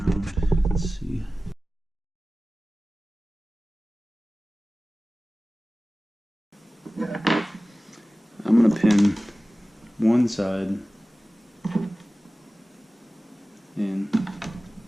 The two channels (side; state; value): both; normal; correlation 0.97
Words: Let's see. I'm gonna pin one side in,